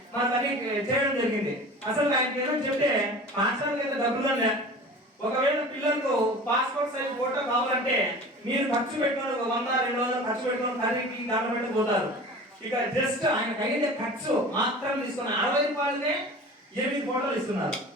మన తల్లి చేయడం జరిగింది. అసలు ఆయనకి ఏమని చెప్తే పాఠశాలకి అయితే డబ్బులు లే, ఒకవేళ పిల్లలకు పాస్పోర్ట్ సైజ్ ఫోటో కావాలంటే మీరు ఖర్చు పెట్టుకుని 100-200 ఖర్చు పెట్టుకుని ఖరీదుకి దాంట్లో పెట్టిపోతారు. ఇక జస్ట్ ఆయన అయ్యే ఖర్చు మాత్రం తీసుకుని 60 రూపాయలనే 8 ఫోటోలు ఇస్తున్నారు.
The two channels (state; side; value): normal; both; correlation 0.39